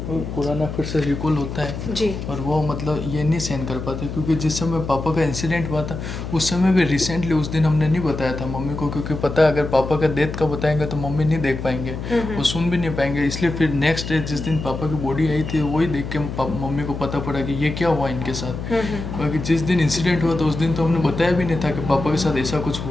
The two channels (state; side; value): noise; left; hum, 7 dB below the sound